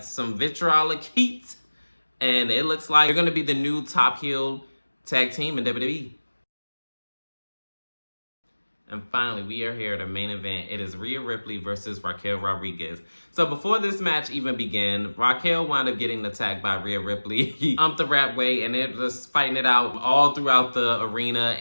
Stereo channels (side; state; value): both; inverted; correlation -1.00